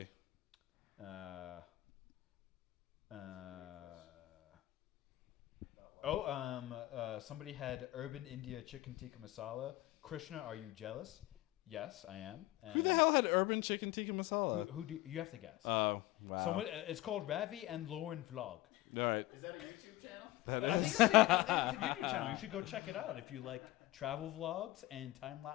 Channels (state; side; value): quieter; right; 17.8 dB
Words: Somebody had Urban India Chicken Tikka Masala. Krishna, are you jealous? Yes, I am. Who the hell had urban chicken tikka masala? Who do you have to guess? Oh, wow. Someone. It's called Ravi and Lauren Vlog. All right. Is that a YouTube channel? I think it's a YouTube channel. You should go check it out if you like travel vlogs and time